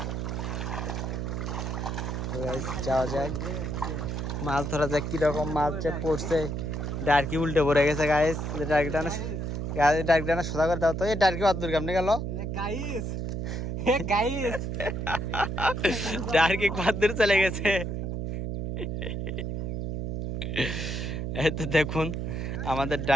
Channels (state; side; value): noise; right; hum, 3 dB below the sound